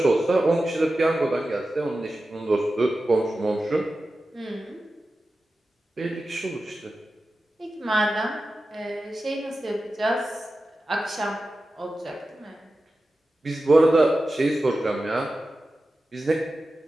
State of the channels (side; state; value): both; normal; correlation 0.93